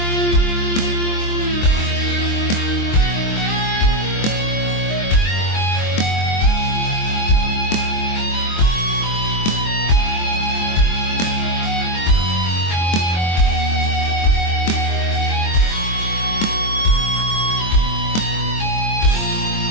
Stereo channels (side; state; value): right; late; 23 ms